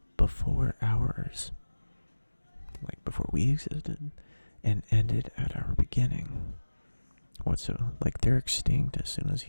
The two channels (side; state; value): both; inverted; correlation -1.00